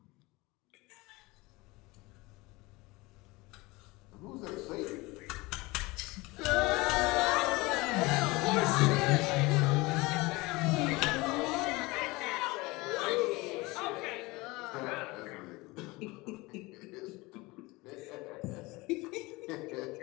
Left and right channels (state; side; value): quieter; right; 22.7 dB